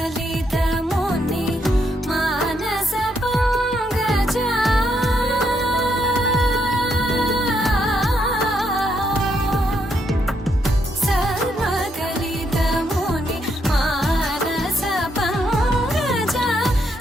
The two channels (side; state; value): both; normal; correlation 0.76